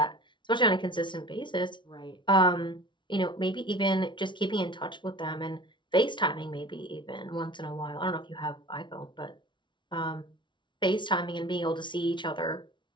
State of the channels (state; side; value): late; right; 0.24 ms